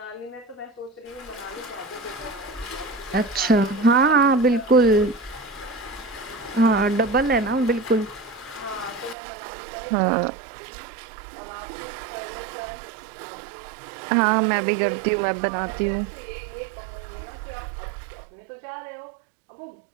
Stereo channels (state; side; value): drops out; left; at 9.2 s